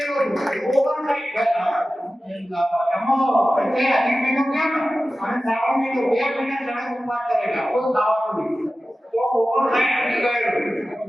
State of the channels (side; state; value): both; normal; correlation 0.95